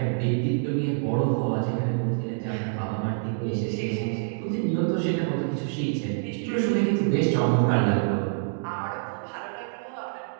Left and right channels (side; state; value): left; silent; digital silence